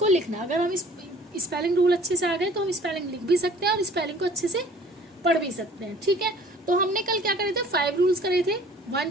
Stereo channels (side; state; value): both; normal; correlation 0.51